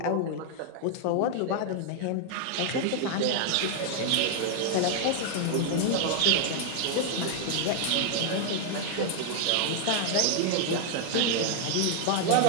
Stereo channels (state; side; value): different; both; correlation 0.00